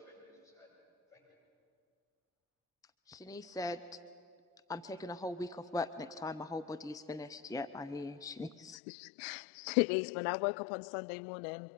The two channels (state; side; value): drops out; right; at 8.8 s